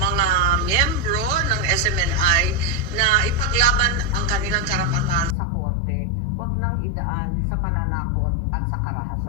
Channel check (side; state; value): right; drops out; at 5.4 s